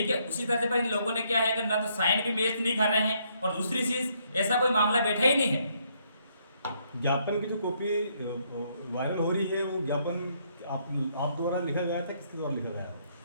है, उसी तरह से इन लोगों ने क्या है कि ना तो साइन भी मैच नहीं कर रहे हैं, और दूसरी चीज ऐसा कोई मामला बैठा ही नहीं है। ज्ञापन की जो कॉपी वायरल हो रही है, वो ज्ञापन आप द्वारा लिखा गया था, किसके द्वारा लिखा गया?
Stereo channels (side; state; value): both; inverted; correlation -0.71